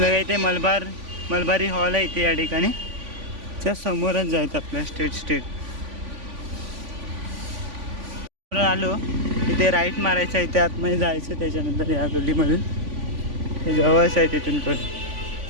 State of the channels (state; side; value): late; left; 3.5 ms